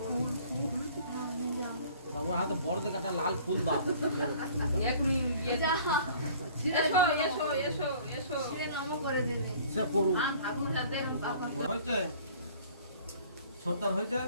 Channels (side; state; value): both; inverted; correlation -0.51